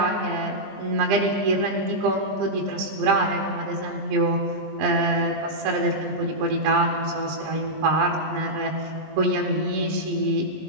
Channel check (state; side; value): late; left; 20 ms